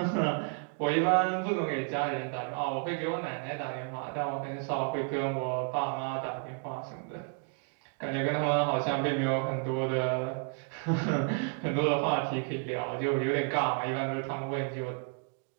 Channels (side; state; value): left; quieter; 38.8 dB